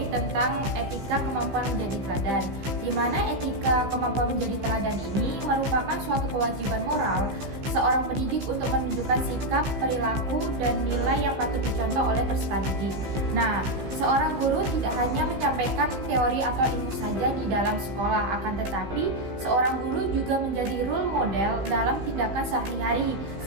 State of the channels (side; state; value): left; late; 15 ms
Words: tentang etika kemampuan menjadi teladan. Di mana etika kemampuan menjadi teladan ini merupakan suatu kewajiban moral seorang pendidik untuk menunjukkan sikap, perilaku, dan nilai yang patut dicontoh oleh peserta didik. Nah, seorang guru tidak hanya menyampaikan teori atau ilmu saja di dalam sekolah, akan tetapi seorang guru juga menjadi role model dalam tindakan sehari-hari